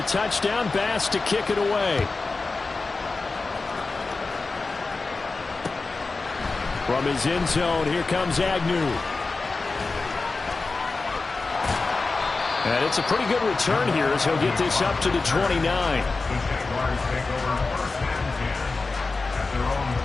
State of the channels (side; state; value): right; quieter; 3.8 dB